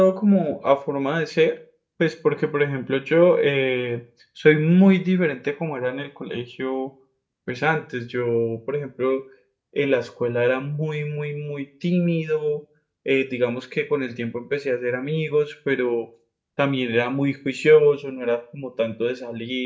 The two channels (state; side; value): identical; both; correlation 1.00